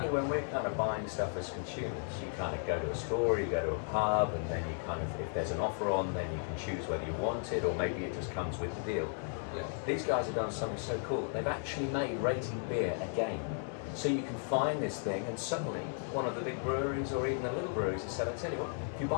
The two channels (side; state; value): right; silent; 54 dB below the other